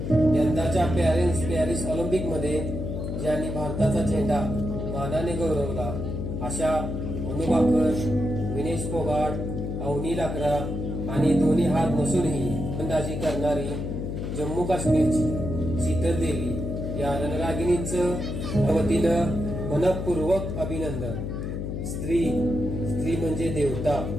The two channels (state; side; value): noise; left; hum, 4 dB below the sound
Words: यंदाच्या पॅरिस ऑलिम्पिक मध्ये ज्यांनी भारताचा झेंडा मानाने गौरवला अशा मनु बाकर, विनेश फोगाट, अवनी लाकरा आणि दोन्ही हात नसूनही फलंदाजी करणारी जम्मू काश्मीरची शीतल देवी या रणरागिणींचं वतीनं मनपूर्वक अभिनंदन. स्त्री म्हणजे देवता,